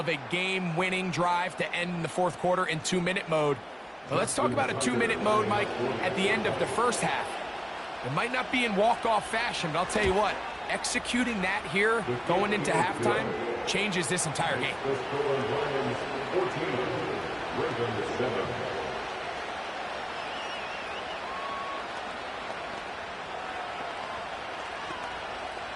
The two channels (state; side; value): identical; both; correlation 1.00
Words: a game-winning drive to end the 4th quarter in 2-minute mode. Well, let's talk about a 2-minute mode, Mike, at the end of the 1st half. It might not be in walk-off fashion, but I'll tell you what, executing that here, going into halftime, changes this entire game. 14, Ravens 7.